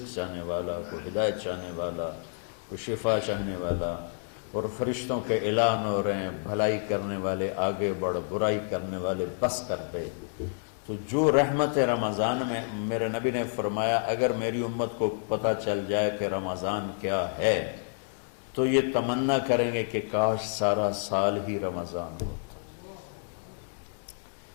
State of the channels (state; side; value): silent; right; digital silence